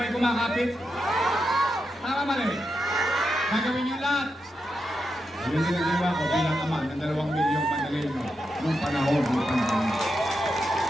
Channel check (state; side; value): normal; both; correlation 0.86